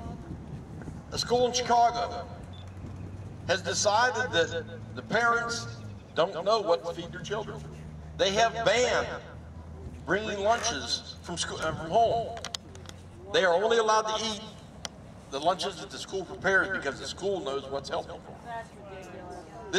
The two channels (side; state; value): both; identical; correlation 1.00